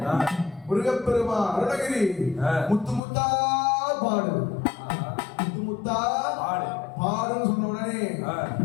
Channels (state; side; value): drops out; right; at 3.0 s